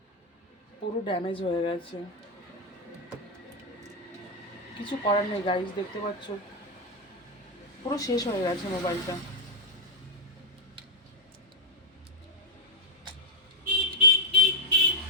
পুরো ড্যামেজ হয়ে গেছে। কিছু করার নেই গাইস, দেখতে পাচ্ছ পুরো শেষ হয়ে গেছে মোবাইলটা।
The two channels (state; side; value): normal; both; correlation -0.03